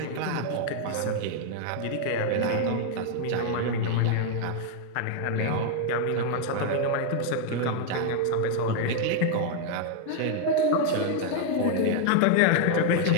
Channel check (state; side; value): different; both; correlation 0.00